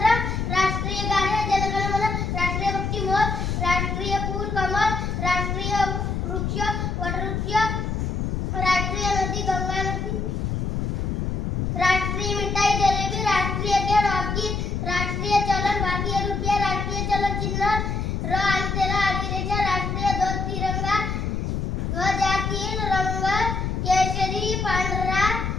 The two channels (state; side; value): noise; left; rumble, 1 dB below the sound